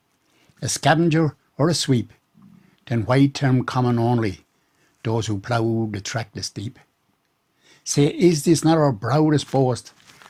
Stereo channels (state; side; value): identical; both; correlation 1.00